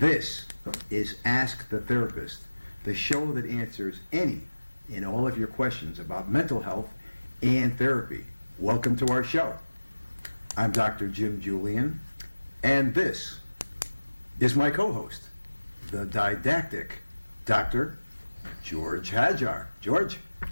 is Ask the Therapist, the show that answers any and all of your questions about mental health and therapy. Welcome to our show. I'm Dr. Jim Julian, and this is my co-host, the didactic Dr. George Hajar. George?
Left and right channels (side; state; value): both; inverted; correlation -1.00